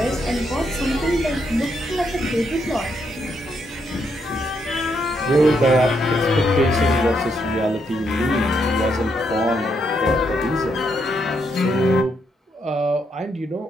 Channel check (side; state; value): both; normal; correlation 0.77